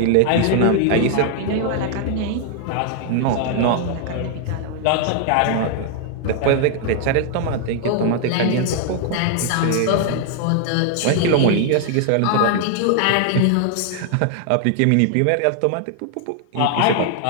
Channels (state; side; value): different; both; correlation 0.00